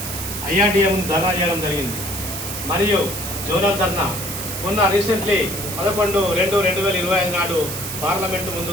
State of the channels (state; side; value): noise; right; hiss, 6 dB below the sound